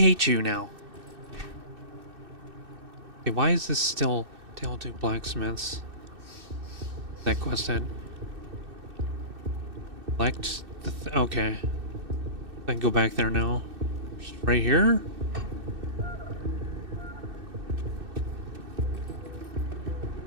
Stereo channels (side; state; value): left; late; 2.6 ms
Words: you now. Okay, why is this still... Tale to blacksmiths? That quest end. Select the... okay. I can go back there now. Just right here?